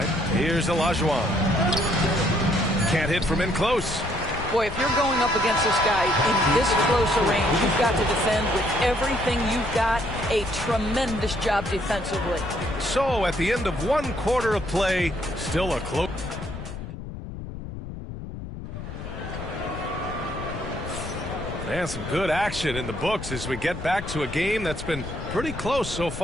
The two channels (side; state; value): left; noise; rumble, 9 dB below the sound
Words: Here's Olajuwon. Can't hit from in close. Boy, if you're going up against this guy in this close a range, you've got to defend with everything you've got. A tremendous job defensively. So at the end of 1 quarter of play, still a close. Man, some good action in the books as we get back to a game that's been pretty close so